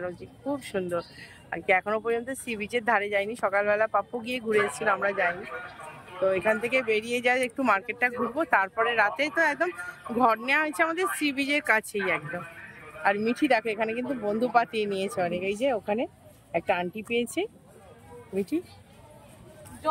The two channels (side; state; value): both; identical; correlation 1.00